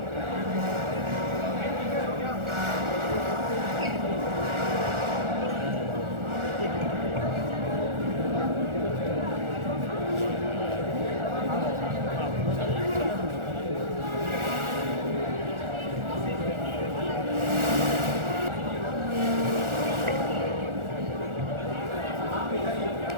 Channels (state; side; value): late; left; 1.4 ms